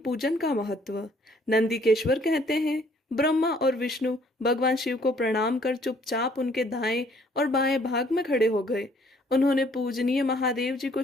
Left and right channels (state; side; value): normal; both; correlation 0.62